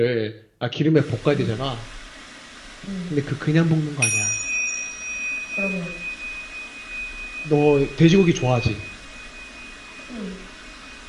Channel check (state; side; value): identical; both; correlation 1.00